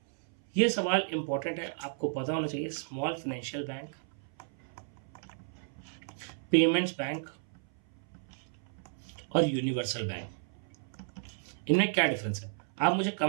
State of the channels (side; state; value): left; silent; 56 dB below the other